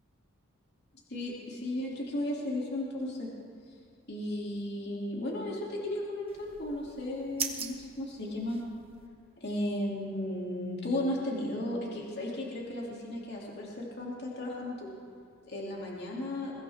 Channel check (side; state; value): both; normal; correlation 0.52